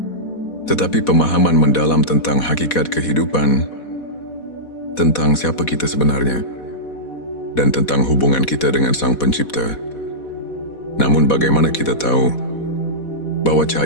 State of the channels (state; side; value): late; right; 4.1 ms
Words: tetapi pemahaman mendalam tentang hakikat kehidupan, tentang siapa kita sebenarnya, dan tentang hubungan kita dengan Sang Pencipta. Namun bagaimana kita tahu bahwa